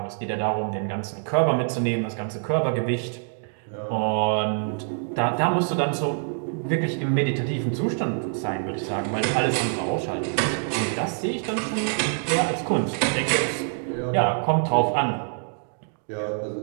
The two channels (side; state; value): left; silent; 61 dB below the other